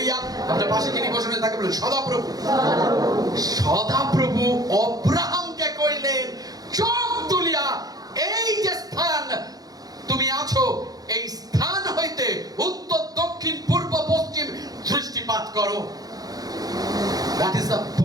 আপনার পাশে যিনি বসেন তাকে বলুন সদাপ্রভু। সদাপ্রভু অব্রাহামকে কইলেন চোখ তুলিয়া, এই যে স্থান তুমি আছো, এই স্থান হইতে উত্তর দক্ষিণ পূর্ব পশ্চিম দৃষ্টিপাত করো। That is the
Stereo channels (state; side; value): late; left; 0.18 ms